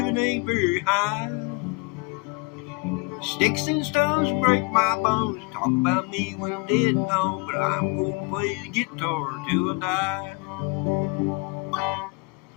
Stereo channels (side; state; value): right; quieter; 29.4 dB